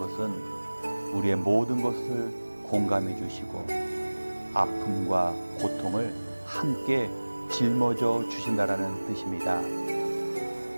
우리의 모든 것을 공감해 주시고 아픔과 고통을 함께 짊어져 주신다라는 뜻입니다.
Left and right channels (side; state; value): both; inverted; correlation -1.00